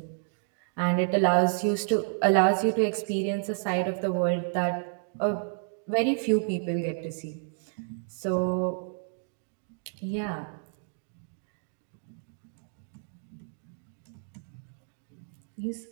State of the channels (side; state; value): left; silent; digital silence